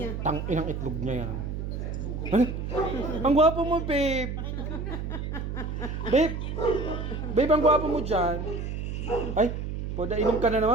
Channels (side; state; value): right; noise; hum, 4 dB below the sound